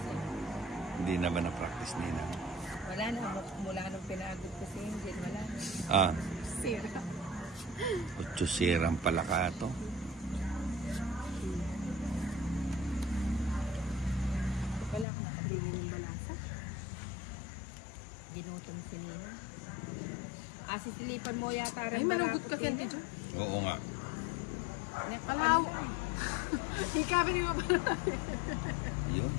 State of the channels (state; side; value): drops out; right; at 15.1 s